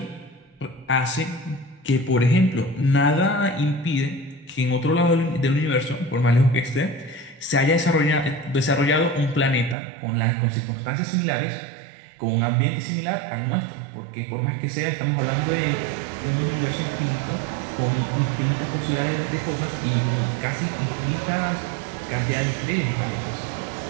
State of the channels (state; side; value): drops out; left; at 9.8 s